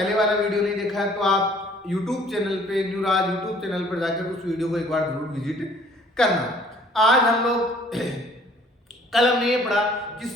वाला वीडियो नहीं देखा है तो आप यूट्यूब चैनल पे न्यू राज यूट्यूब चैनल पर जाकर उस वीडियो को एक बार जरूर विजिट करना। आज हम लोग कल हमने ये पढ़ा कि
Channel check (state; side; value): normal; both; correlation 0.56